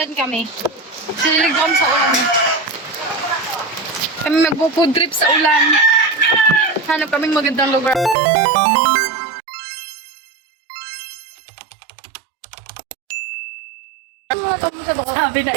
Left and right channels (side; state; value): left; drops out; at 8.2 s